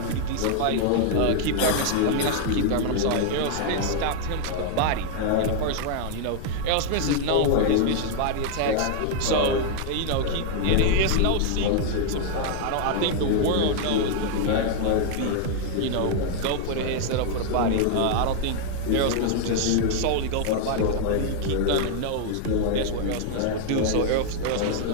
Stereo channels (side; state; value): both; different; correlation 0.00